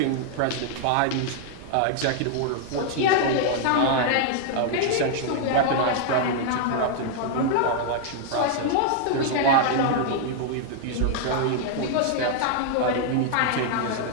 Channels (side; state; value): both; different; correlation 0.00